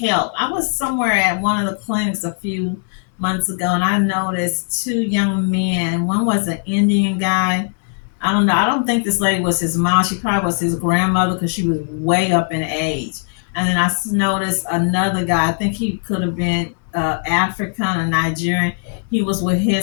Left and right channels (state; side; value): silent; right; 58 dB below the other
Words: I was somewhere at one of the clinics a few months ago and I noticed two young men. One was an Indian guy. I don't know. I don't think this lady was his mom. She probably was his grandmother because she was way up in age. And then I noticed another guy. I think he could have been African or Nigerian. He was with